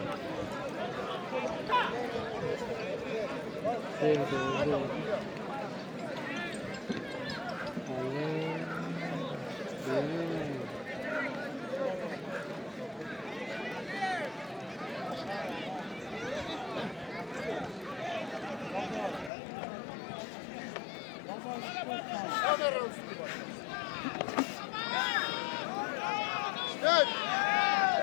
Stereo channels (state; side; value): drops out; right; at 19.3 s